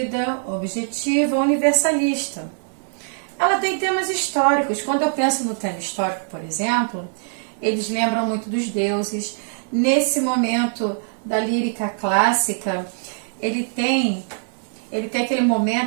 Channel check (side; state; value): left; silent; digital silence